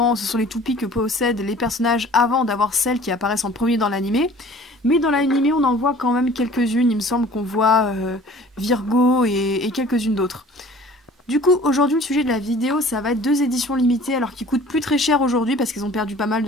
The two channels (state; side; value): normal; both; correlation 0.49